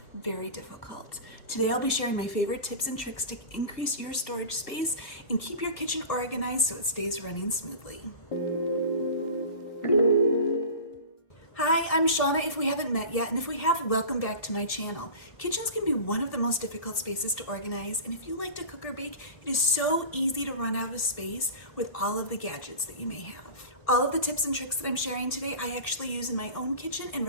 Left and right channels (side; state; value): right; late; 1.7 ms